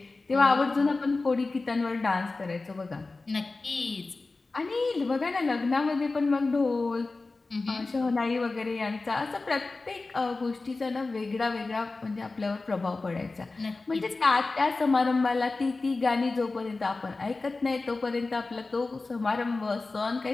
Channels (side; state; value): right; quieter; 3.6 dB